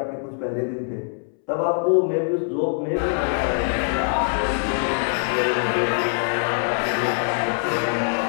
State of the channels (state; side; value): silent; right; 63 dB below the other